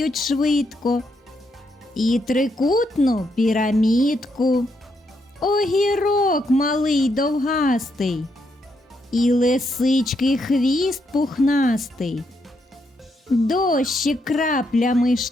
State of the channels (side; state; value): both; normal; correlation 0.78